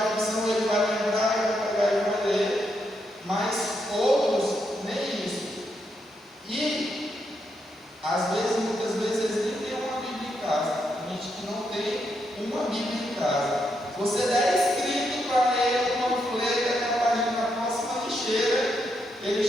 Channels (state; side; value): normal; both; correlation 0.80